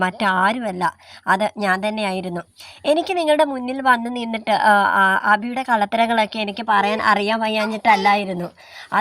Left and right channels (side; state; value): both; identical; correlation 1.00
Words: മറ്റാരുമല്ല, അത് ഞാൻ തന്നെയായിരുന്നു. എനിക്ക് നിങ്ങളുടെ മുന്നിൽ വന്ന് നിന്നിട്ട് അബിയുടെ കള്ളത്തരങ്ങളൊക്കെ എനിക്ക് പറയാൻ അറിയാൻ വയ്യാഞ്ഞിട്ടല്ലായിരുന്നു.